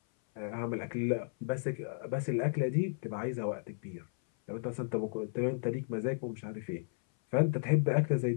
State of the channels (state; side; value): silent; right; 55 dB below the other